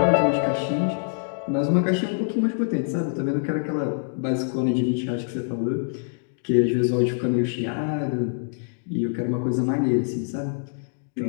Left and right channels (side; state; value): right; silent; digital silence